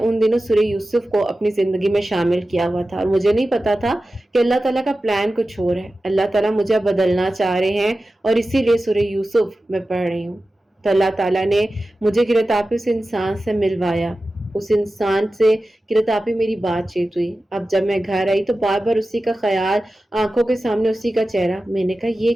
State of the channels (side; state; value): both; normal; correlation 0.94